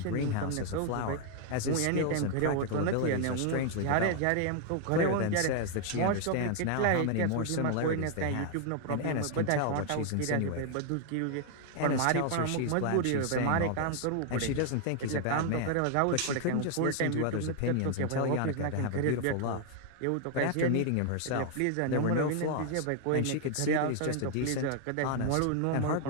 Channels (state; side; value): different; both; correlation 0.00